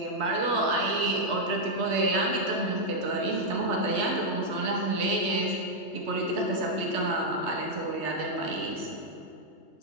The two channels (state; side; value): late; right; 3.2 ms